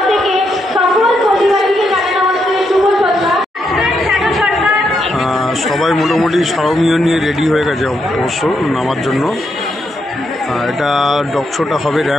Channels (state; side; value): normal; both; correlation 0.80